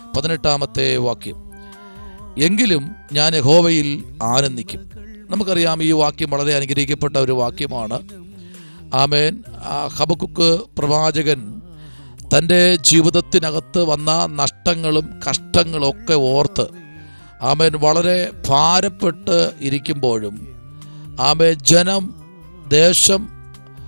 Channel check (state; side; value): inverted; both; correlation -1.00